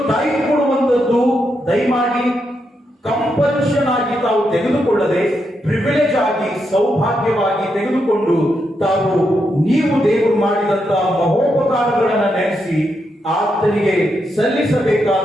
ಟೈಪ್ ಕೊಡುವಂತದ್ದು ದಯಮಾಡಿ ಕಂಪಲ್ಷನ್ ಆಗಿ ತಾವು ತೆಗೆದುಕೊಳ್ಳದೆ ಪ್ರಿವಿಲೇಜ್ ಆಗಿ ಸೌಭಾಗ್ಯವಾಗಿ ತೆಗೆದುಕೊಂಡು ತಾವು ನೀವು ದೇವರು ಮಾಡಿದಂತಹ ಮಹೋಪಕಾರಗಳನ್ನ ನೆನೆಸಿ ಆತನಿಗೆ ಸಲ್ಲಿಸಬೇಕಾದ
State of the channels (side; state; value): both; normal; correlation 0.82